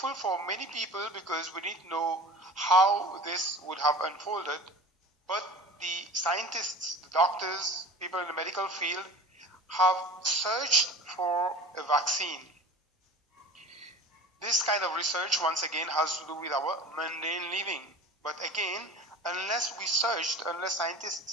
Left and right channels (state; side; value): normal; both; correlation 0.37